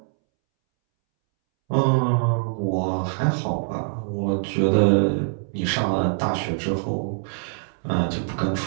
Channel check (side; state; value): left; silent; 63 dB below the other